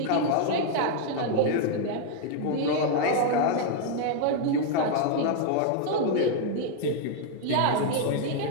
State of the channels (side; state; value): both; different; correlation 0.00